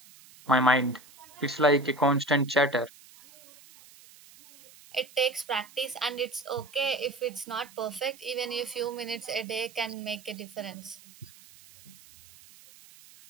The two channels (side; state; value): right; noise; hiss, 23 dB below the sound